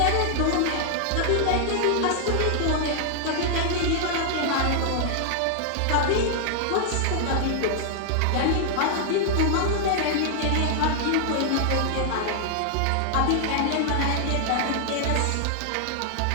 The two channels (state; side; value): different; both; correlation -0.01